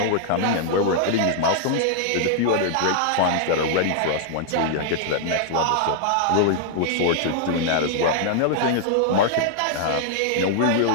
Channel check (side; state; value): both; different; correlation -0.01